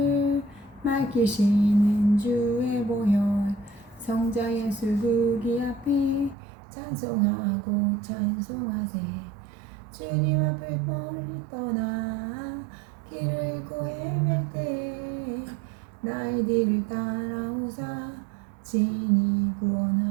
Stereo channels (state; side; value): drops out; left; at 6.4 s